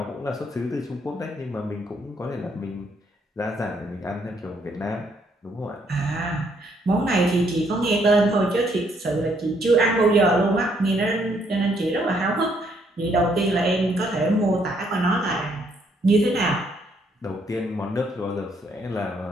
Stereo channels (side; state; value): both; normal; correlation 0.70